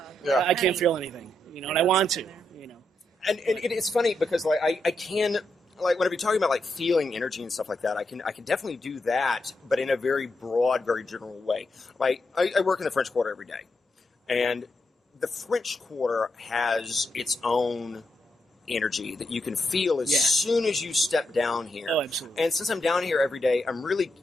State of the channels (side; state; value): both; normal; correlation 0.83